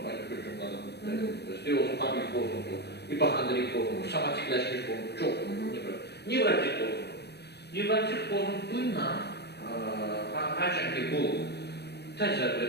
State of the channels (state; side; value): late; right; 0.48 ms